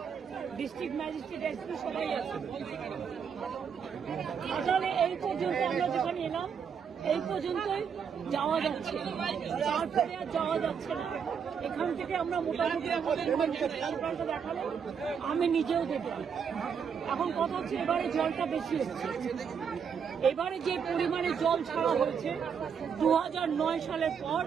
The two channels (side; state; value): left; quieter; 6.9 dB